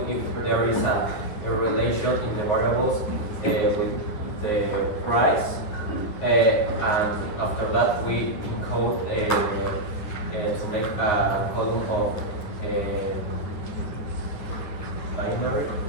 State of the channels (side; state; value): right; late; 9.7 ms